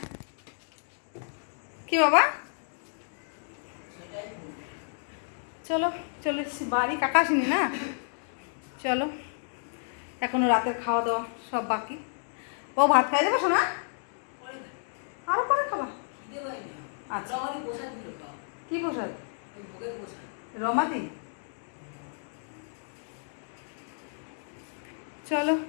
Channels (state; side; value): silent; right; digital silence